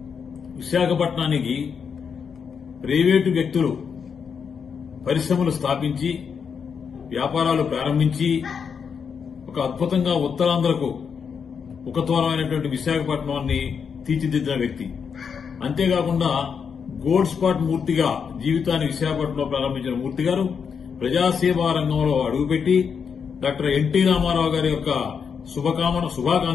విశాఖపట్నానికి ప్రైవేటు వ్యక్తులు పరిశ్రమలు స్థాపించి వ్యాపారాలు ప్రారంభించి ఒక అద్భుతంగా ఉత్తరాంధ్రకు ఉపతూరమైనటువంటి విశాఖపట్నాన్ని తీర్చిదిద్దిన వ్యక్తి. అంతేకాకుండా గోల్డ్ స్పాట్ మూర్తిగా జీవితాన్ని విశాఖపట్నంలో ప్రారంభించిన మూర్తి గారు ప్రజాసేవా రంగంలో అడుగుపెట్టి డాక్టర్ ఎన్టీ రామారావు గారి యొక్క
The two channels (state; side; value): quieter; right; 6.5 dB